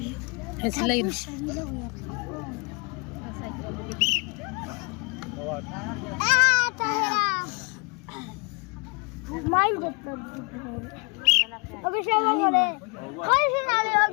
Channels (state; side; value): quieter; right; 32.1 dB